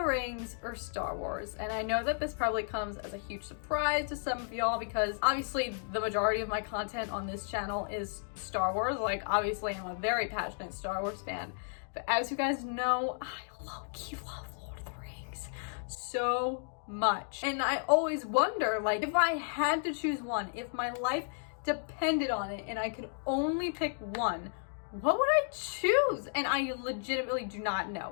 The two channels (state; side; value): silent; right; digital silence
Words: Rings or Star Wars. And I know that this probably comes as a huge surprise to some of y'all because obviously the majority of my content on this channel is Star Wars. Like, obviously I'm a very passionate Star Wars fan, but as you guys know, I low-key love Lord of the Rings so much. And I always wonder, like, if I had to choose one, if my life depended on it and I could only pick one, what would I choose? And I legitimately do not